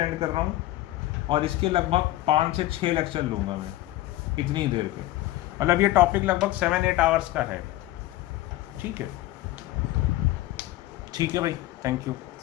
कर रहा हूँ और इसके लगभग 5 से 6 लेक्चर लूँगा मैं इतनी देर के, मतलब ये टॉपिक लगभग 7-8 आवर्स का है, ठीक है। ठीक है भाई, थैंक यू।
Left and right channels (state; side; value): quieter; right; 16.2 dB